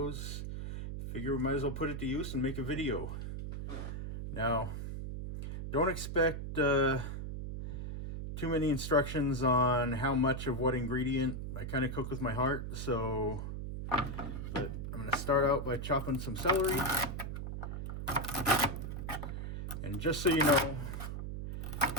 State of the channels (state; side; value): noise; right; hum, 5 dB below the sound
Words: figure we might as well put it to use and make a video. Now, don't expect too many instructions on how much of what ingredient. I kind of cook with my heart, so but I'm going to start out by chopping some celery. And just so you know,